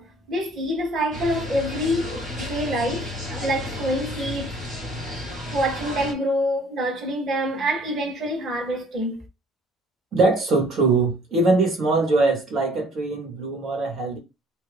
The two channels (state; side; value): normal; both; correlation 0.56